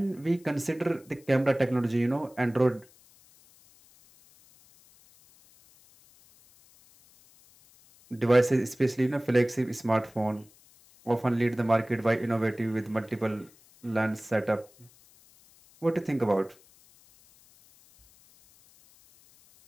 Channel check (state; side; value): noise; left; hiss, 28 dB below the sound